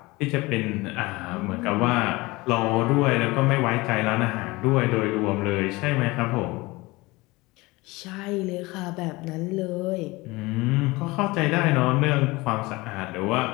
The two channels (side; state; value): right; quieter; 22.2 dB